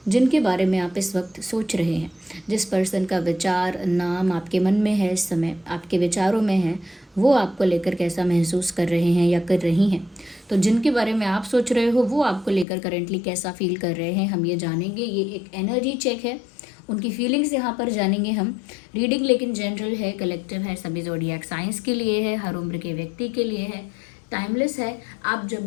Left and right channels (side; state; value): right; drops out; at 12.7 s